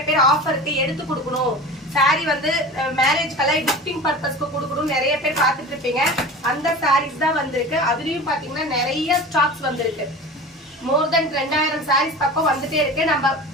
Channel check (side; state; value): both; normal; correlation 0.35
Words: பேர் ஆஃபருக்கு எடுத்து கொடுக்கணும், சாரி வந்து மேரேஜ்க்கெல்லாம் கிஃப்டிங் பர்பஸ்க்கு கொடுக்கணும் நிறைய பேர் பார்த்துட்டு இருப்பீங்க. அந்த சாரீஸ் தான் வந்திருக்கு. அதுலயும் பாத்தீங்கன்னா நிறைய ஸ்டாக்ஸ் வந்திருக்கு. மோர் தென் 2000 சாரீஸ் பக்கம் வந்துட்டே இருக்கு.